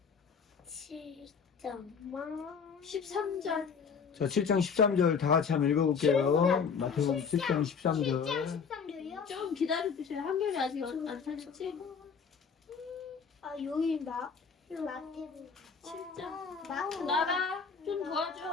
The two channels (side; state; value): right; quieter; 6.0 dB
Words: 7장. 13절. 자, 7장 13절 다 같이 한번 읽어볼게요. 마태복음 7장 13절. 13절이요? 좀 기다려주세요. 한결이 아직 안 찾았지? 아, 여기인가? 마태복음 7장. 나가. 좀